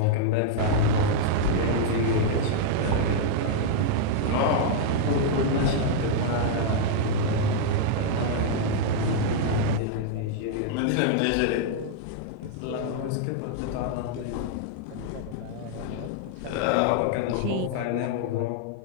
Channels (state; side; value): different; both; correlation -0.01